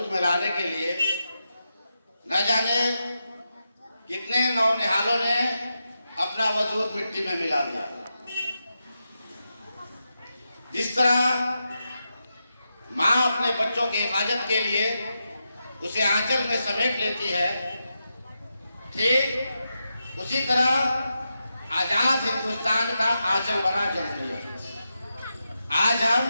में लाने के लिए न जाने कितने नौनिहालों ने अपना वजूद मिट्टी में मिला दिया। जिस तरह माँ अपने बच्चों की हिफाजत के लिए उसे आंचल में समेट लेती है, ठीक उसी तरह आजाद हिंदुस्तान का आंचल बना जमहूरियत। आज हम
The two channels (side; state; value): both; inverted; correlation -0.88